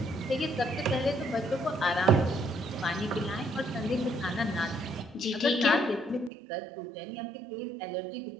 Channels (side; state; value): left; drops out; at 6.3 s